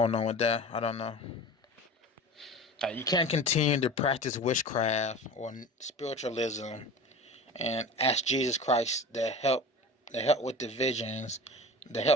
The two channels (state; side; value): normal; both; correlation 0.35